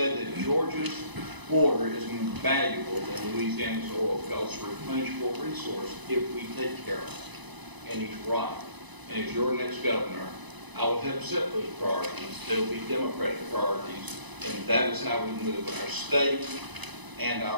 that Georgia's water is more valuable than Louisiana's oil because it's a replenishable resource if we take care of it. And he's right. And as your next governor, I will help set those priorities. They'll be Democratic priorities, and that is how we move our state and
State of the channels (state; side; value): late; left; 1.0 ms